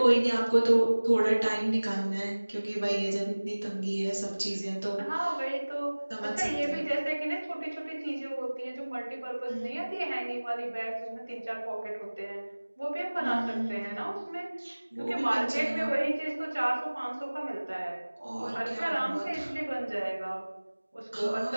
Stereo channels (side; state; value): both; inverted; correlation -1.00